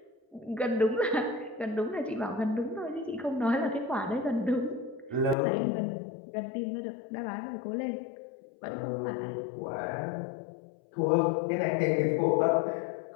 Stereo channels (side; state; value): right; drops out; at 5.4 s